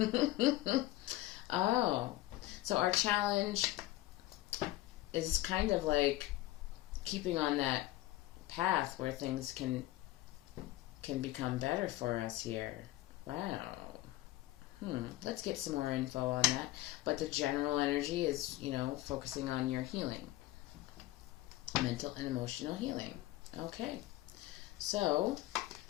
Oh, so our challenge is kind of like keeping on that path where things can become better for us here. Wow. Let's get some more info on that. But the general energy is, focusing on your healing. Mental and emotional healing. Okay. So,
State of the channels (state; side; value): quieter; right; 16.8 dB